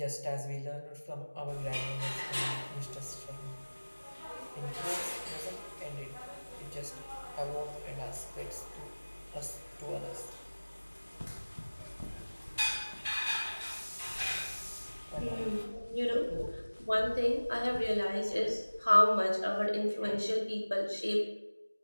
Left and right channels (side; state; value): both; inverted; correlation -1.00